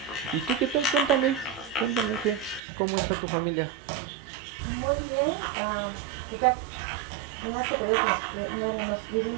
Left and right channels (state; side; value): drops out; left; at 2.6 s